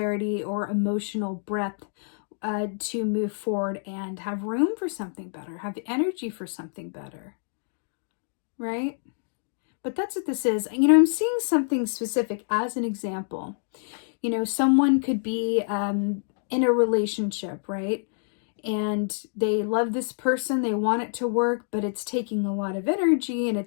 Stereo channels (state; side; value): silent; right; digital silence